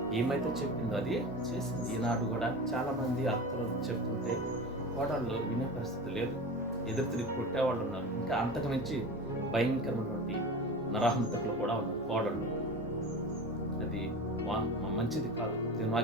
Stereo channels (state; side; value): normal; both; correlation 0.31